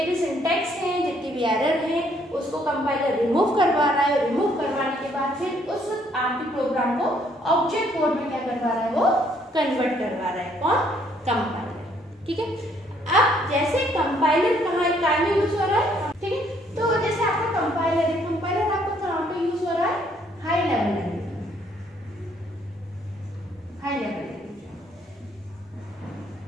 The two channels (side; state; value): both; normal; correlation 0.67